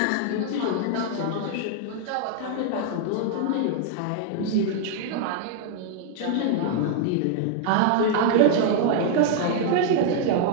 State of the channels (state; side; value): different; both; correlation 0.00